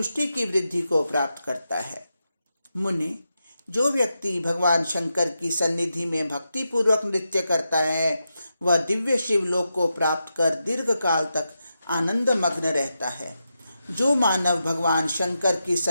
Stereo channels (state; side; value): inverted; both; correlation -0.88